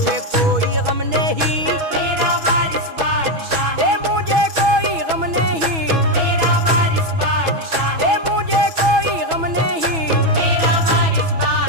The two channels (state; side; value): late; left; 6.2 ms